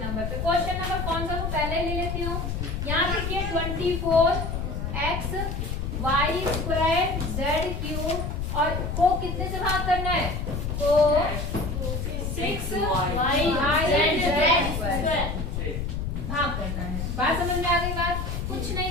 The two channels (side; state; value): left; noise; rumble, 3 dB below the sound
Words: नंबर पे। क्वेश्चन नंबर कौन सा, वो पहले ले लेती हूँ। यहाँ देखिए 24x y square z cube और को कितने से भाग करना है, को 6y z भाग करना है। बात समझ में आ गई? बात कुछ